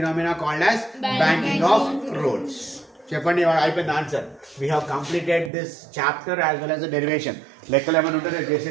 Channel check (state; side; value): drops out; left; at 5.5 s